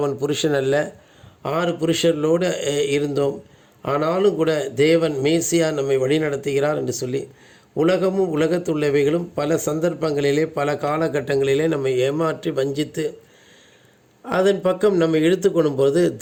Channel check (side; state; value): both; identical; correlation 1.00